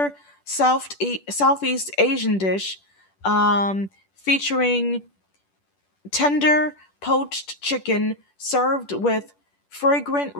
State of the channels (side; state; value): right; late; 10 ms